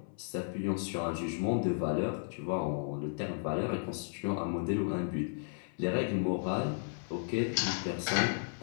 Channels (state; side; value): silent; right; 55 dB below the other